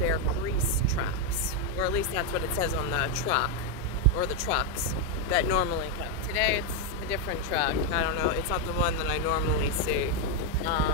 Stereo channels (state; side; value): normal; both; correlation 0.02